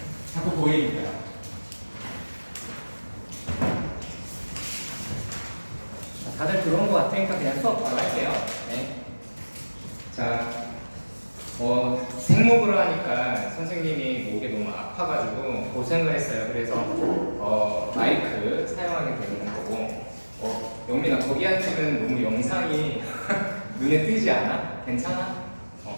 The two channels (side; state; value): both; inverted; correlation -1.00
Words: 자꾸 보이니까. 다들 들어온 것 같으니까 그냥 수업 바로 할게요. 네. 자, 생목으로 하니까 선생님이 목이 너무 아파가지고 고생을 했어요. 그래서 마이크 사용하게 되는 거고, 영민아 거기 앉으면 너무 영상이 눈에 띄지 않아? 괜찮아?